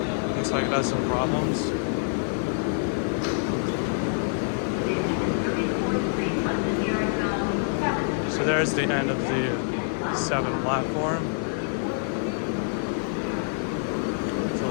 Looks like it has some problems. So there's the end of the 7 platform. So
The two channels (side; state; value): right; silent; digital silence